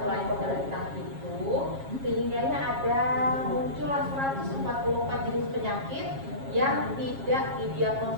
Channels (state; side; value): late; left; 7.4 ms